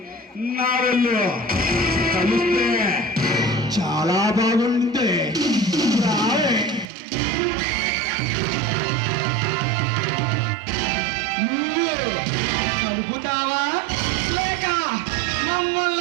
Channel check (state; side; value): drops out; left; at 6.9 s